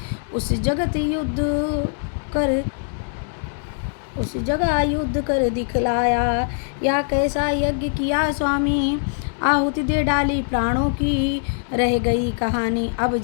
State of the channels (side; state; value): right; silent; digital silence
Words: उस जगह युद्ध कर दिखलाया। या कैसा यज्ञ किया स्वामी, आहुति दे डाली प्राणों की, रह गई कहानी अब